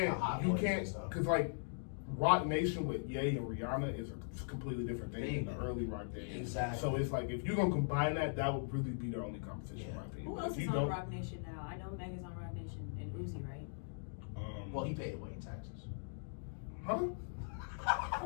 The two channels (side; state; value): right; silent; digital silence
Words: Hot Boys and stuff. because like Rock Nation with Ye and Rihanna is a completely different thing Big. than the early Rock days. Exactly. So it's like if you're gonna combine that, that would really be their only competition, in my opinion. Who But else if is you on don't, Rock Nation now? I know Meg is on Rock Nation and Uzi, right? Well, he paid Wayne taxes. huh?